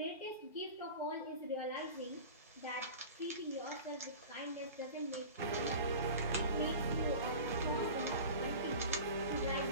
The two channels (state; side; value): inverted; both; correlation -0.35